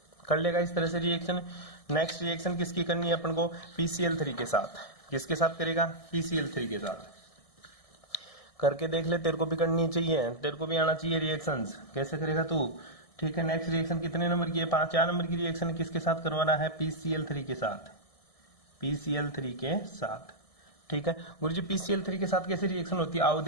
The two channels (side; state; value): right; late; 1.6 ms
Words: कर लेगा इस तरह से रिएक्शन। नेक्स्ट रिएक्शन किसकी करनी है अपन को, PCl3 के साथ। किसके साथ करेगा, PCl3 के साथ। करके देख ले, तेरे को भी करनी चाहिए, तेरे को भी आना चाहिए रिएक्शंस, कैसे करेगा तू, ठीक है। नेक्स्ट रिएक्शन कितने नंबर की है, 4 नंबर की रिएक्शन है, किसके साथ करवाना है, PCl3 के साथ, PCl3 के साथ, ठीक है। गुरुजी PCl3 के साथ कैसे रिएक्शन होती है, आओ